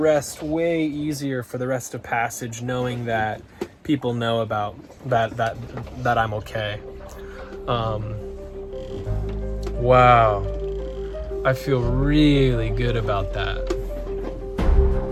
way easier for the rest of passage, knowing that people know about that I'm okay. Wow, I feel really good about that.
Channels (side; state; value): both; identical; correlation 1.00